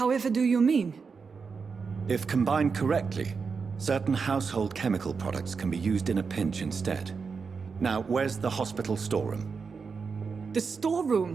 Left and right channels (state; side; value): quieter; left; 5.3 dB